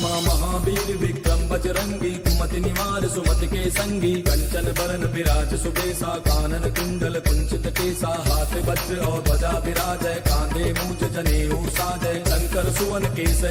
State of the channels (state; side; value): identical; both; correlation 1.00